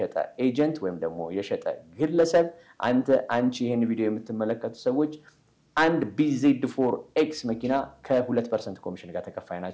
ኤጀንት ወይም ደግሞ የሸጠ ግለሰብ አንቺ ይሄን ቪዲዮ የምትመለከቱ ሰዎች አንድ BZ4X መኪና ከ2% ኮሚሽን ጋር ተከፋይ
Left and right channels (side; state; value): both; identical; correlation 1.00